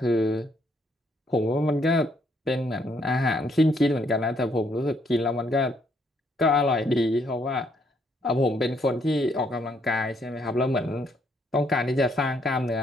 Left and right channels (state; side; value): normal; both; correlation 0.71